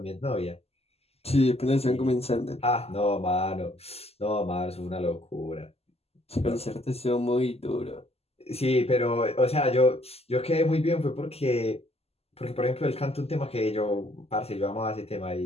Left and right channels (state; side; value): late; right; 0.29 ms